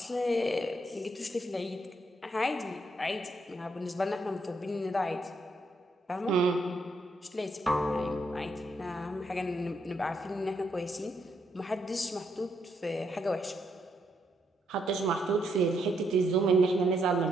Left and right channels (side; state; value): both; normal; correlation 0.77